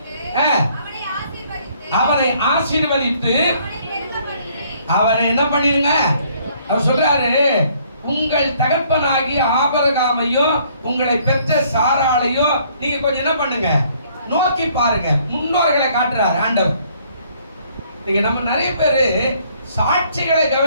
அவனை ஆசீர்வதித்து அவனை என்ன பண்ணிருங்க. அவர் சொல்றாரு, உங்கள் தகப்பனாகிய ஆபிரகாமையும் உங்களை பெற்ற சாராளையும் நீங்க கொஞ்சம் என்ன பண்ணுங்க, நோக்கி பாருங்க. முன்னோர்களை காட்டுறாரு ஆண்டவர். நீங்க நம்ம நிறைய பேரு சாட்சிகளை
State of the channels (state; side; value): inverted; both; correlation -0.63